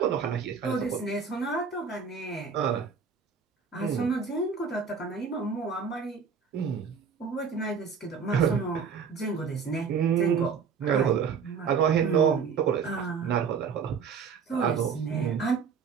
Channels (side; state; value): left; quieter; 6.2 dB